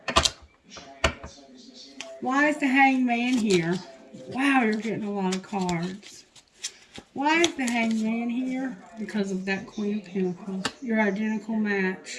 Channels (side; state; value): both; identical; correlation 1.00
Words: Why is the hangman here? Wow, you're getting a lot of cards. Why is the hangman here? Because of that Queen of Pentacles. Your identical